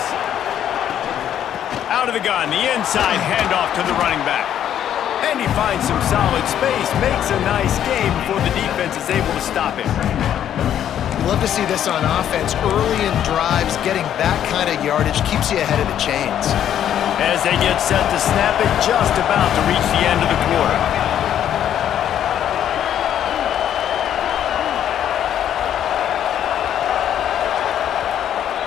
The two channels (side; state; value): right; quieter; 10.3 dB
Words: Out of the gun, the inside handoff to the running back. And he finds some solid space, makes a nice game before the defense is able to stop him. Love to see this on offense. Early in drives, getting that kind of yardage keeps you ahead of the chains. As they get set to snap it, just about to reach the end of the quarter.